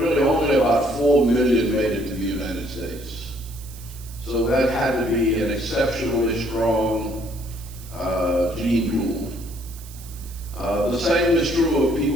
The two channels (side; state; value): right; noise; hiss, 18 dB below the sound